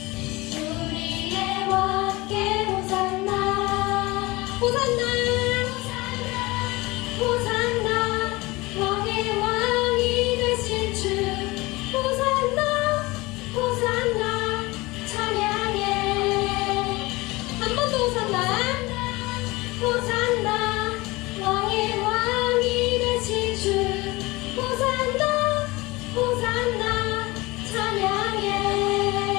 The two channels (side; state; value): right; quieter; 22.1 dB